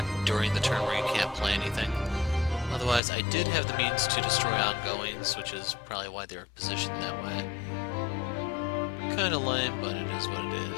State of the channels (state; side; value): drops out; right; at 3.0 s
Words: during the turn where you can't play anything. Otherwise, I did have the means to destroy ongoings, which is probably why they were positioned that way. Kinda lame, but it is what it